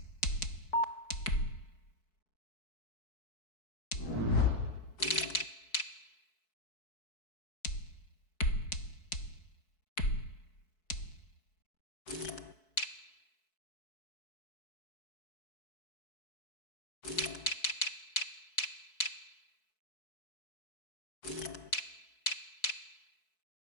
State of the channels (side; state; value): right; late; 4.6 ms